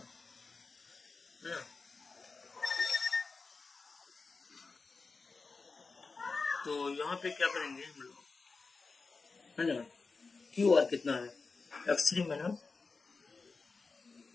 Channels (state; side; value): quieter; right; 4.2 dB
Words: है ना, तो यहाँ पे क्या करेंगे हम लोग है ना, QR कितना है, x3 माइनस